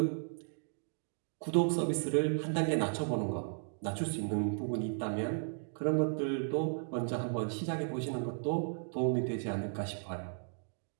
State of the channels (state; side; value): silent; left; digital silence